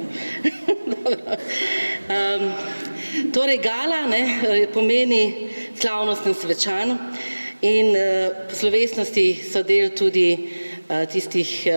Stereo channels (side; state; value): both; inverted; correlation -1.00